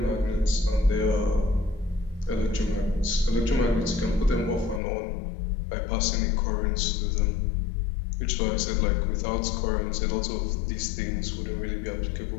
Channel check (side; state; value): right; drops out; at 4.8 s